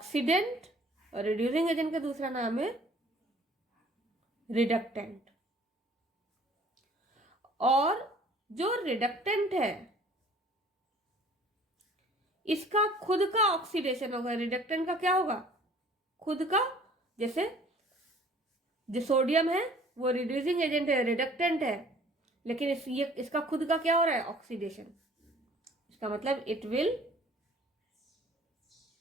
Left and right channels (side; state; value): both; normal; correlation 0.53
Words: और रिड्यूसिंग एजेंट का दूसरा नाम है रिडक्टेंट। और जो रिडक्टेंट है इसका खुद का ऑक्सीडेशन होगा। रिडक्टेंट का क्या होगा? खुद का। जैसे जो सोडियम है वो रिड्यूसिंग एजेंट है, रिडक्टेंट है, लेकिन इसका खुद का क्या हो रहा है? ऑक्सीडेशन। इसका मतलब इट विल